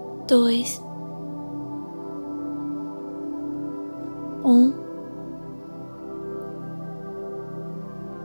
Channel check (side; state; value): both; inverted; correlation -1.00